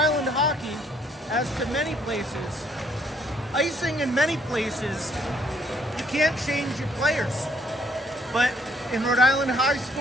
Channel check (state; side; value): normal; both; correlation 0.67